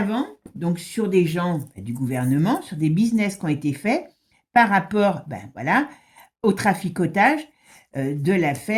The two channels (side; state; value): both; identical; correlation 1.00